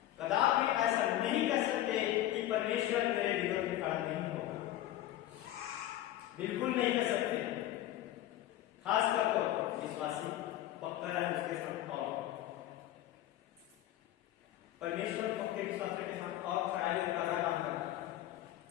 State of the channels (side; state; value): right; quieter; 13.7 dB